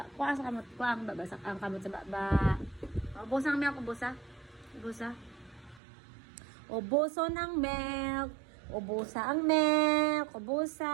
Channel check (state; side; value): drops out; left; at 5.8 s